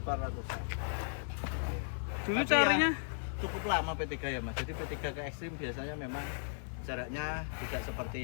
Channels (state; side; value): silent; right; 54 dB below the other